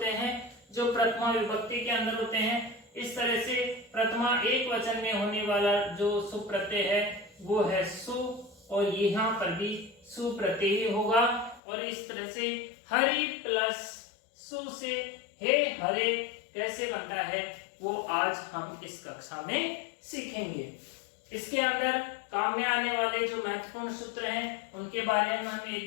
हैं जो प्रथमा विभक्ति के अंदर होते हैं। इस तरह से प्रथमा एक वचन में होने वाला जो सुप प्रत्यय है वो है सु, और यहाँ पर भी सु प्रत्यय ही होगा। और इस तरह से हरि प्लस सु से हे हरे कैसे बनता है वो आज हम इस कक्षा में सीखेंगे। इसके अंदर काम में आने वाले जो महत्वपूर्ण सूत्र हैं उनके बारे में हम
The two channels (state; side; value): drops out; right; at 11.6 s